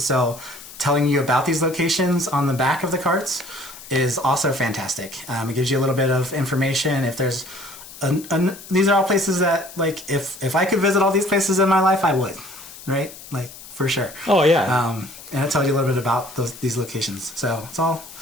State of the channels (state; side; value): noise; left; hiss, 16 dB below the sound